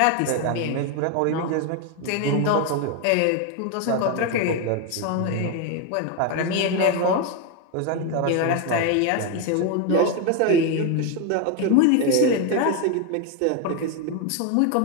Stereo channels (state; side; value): different; both; correlation 0.01